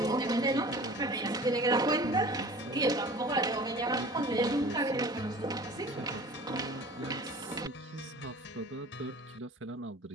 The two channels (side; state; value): both; normal; correlation 0.42